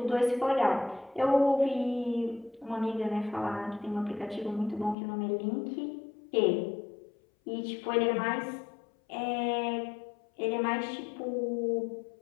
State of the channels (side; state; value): right; drops out; at 5.0 s